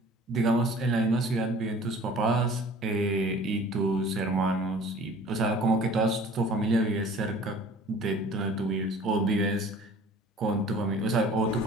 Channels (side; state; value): both; normal; correlation 0.48